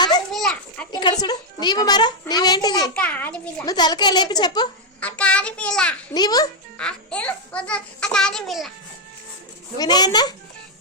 ఇక్కడ చూడు. నీవు మరా నీవేంటిది? నువ్వు తలకాయ లేపి చెప్పు. నీవు వినయన్న?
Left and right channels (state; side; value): normal; both; correlation -0.01